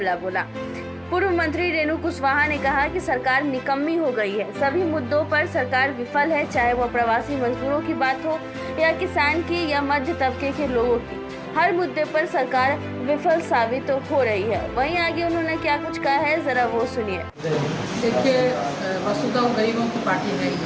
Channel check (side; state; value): both; identical; correlation 1.00